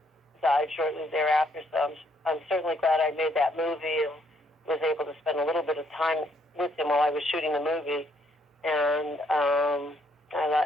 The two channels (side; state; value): both; normal; correlation 0.70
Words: died shortly thereafter, so I'm certainly glad I made that movie and was able to spend a little bit of time with him while I was shooting the movie. And